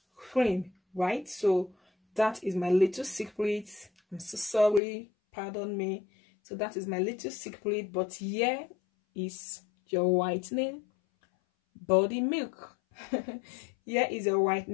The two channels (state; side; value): drops out; right; at 4.8 s